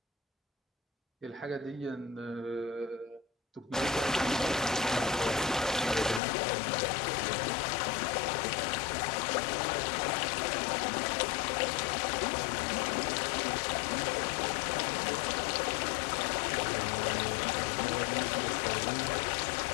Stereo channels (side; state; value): right; drops out; at 6.2 s